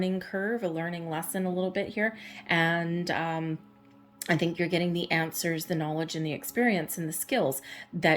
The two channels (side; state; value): both; identical; correlation 1.00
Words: curve, a learning lesson a little bit here, and I think you're getting the answers, the knowledge, and the experience and the skills